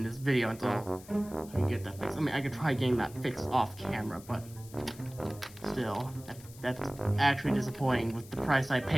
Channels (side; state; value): left; noise; hiss, 20 dB below the sound